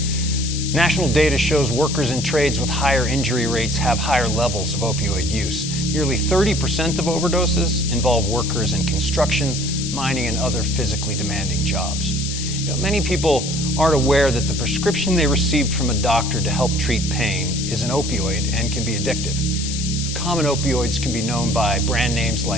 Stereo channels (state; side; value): noise; left; hiss, 6 dB below the sound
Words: National data shows workers in trades with higher injury rates have higher levels of opioid use. Nearly 30% of overdoses involve workers in construction, mining, and other physically demanding jobs. Many people aren't aware that the prescription they received from a doctor to help treat pain is an opioid and can be addictive. Common opioids can be known by brand names